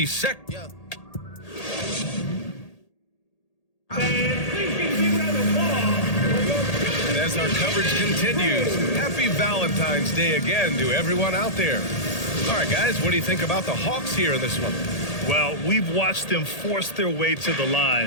And as our coverage continues, happy Valentine's Day again to everyone out there. All right, guys, what do you think about the Hawks here in this one? Well, we've watched them force their way to the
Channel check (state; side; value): late; right; 1.8 ms